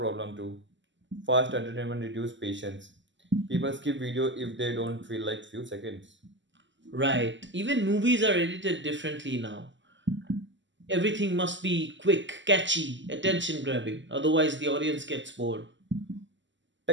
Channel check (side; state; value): left; late; 0.54 ms